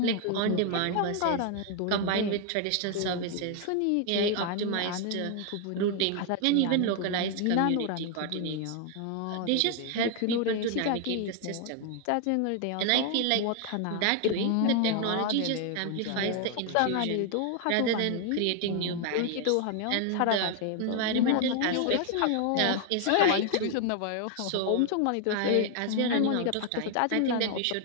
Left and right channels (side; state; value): both; different; correlation 0.00